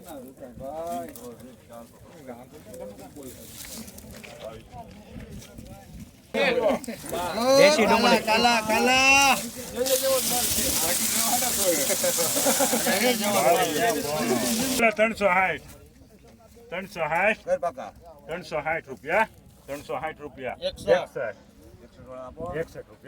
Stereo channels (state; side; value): identical; both; correlation 1.00